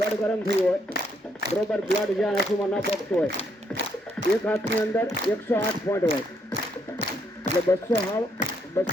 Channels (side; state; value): both; normal; correlation 0.73